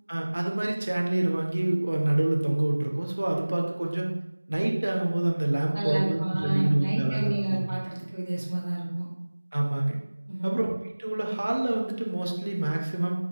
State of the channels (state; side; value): inverted; both; correlation -1.00